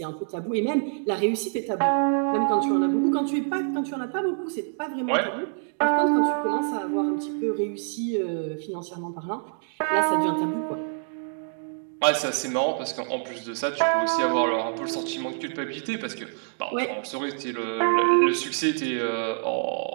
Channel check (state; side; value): silent; left; digital silence